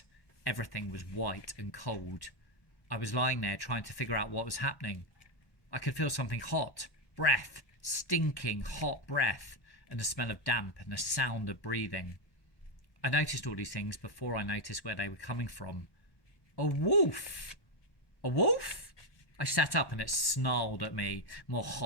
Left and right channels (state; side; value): late; right; 1.1 ms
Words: Everything was white and cold. I was lying there trying to figure out what was happening. I could feel something hot, breath, stinking hot breath, and the smell of damp and the sound of breathing. I noticed all these things before I noticed where they were coming from. A wolf! A wolf? I sat up and it snarled at me, more